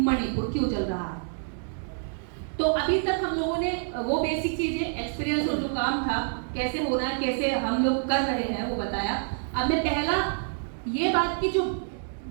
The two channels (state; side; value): silent; left; digital silence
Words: क्यों चल रहा है। तो अभी तक हम लोगों ने वो बेसिक चीजें, एक्सपीरियंस और जो काम था कैसे होना है, कैसे हम लोग कर रहे हैं, वो बताया। अब मैं पहला ये बात की, जो